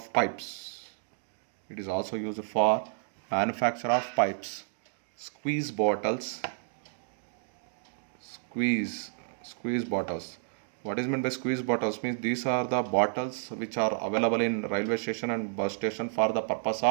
pipes. It is also used for manufacture of pipes. Squeeze bottles. Squeeze bottles. What is meant by squeeze bottles? Means these are the bottles which are available in railway station and bus station for the purpose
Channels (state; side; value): silent; left; digital silence